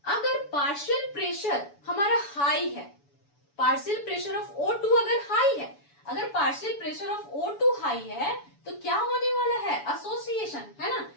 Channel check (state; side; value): late; right; 7.0 ms